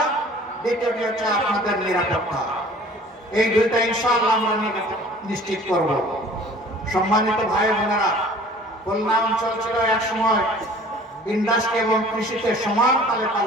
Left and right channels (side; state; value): both; normal; correlation 0.49